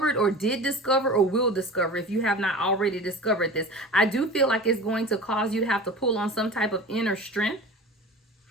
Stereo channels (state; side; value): normal; both; correlation 0.35